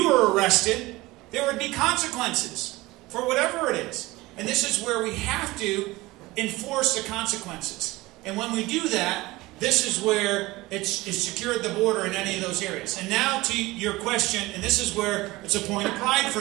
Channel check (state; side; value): quieter; left; 20.2 dB